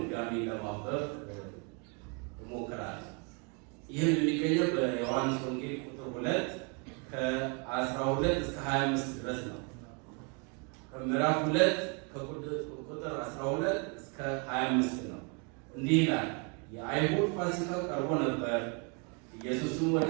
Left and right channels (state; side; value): quieter; left; 34.4 dB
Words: ለማንበብ እሞክራለሁ። ይህም የሚገኘው በዮሐንስ ወንጌል ቁጥር 2 ከ12 እስከ 25 ድረስ ነው። ከምዕራፍ 2 ከቁጥር 12 እስከ 25 ነው። እንዲህ ይላል። የአይሁድ ፋሲካ ቀርቦ ነበር። ኢየሱስም ወደ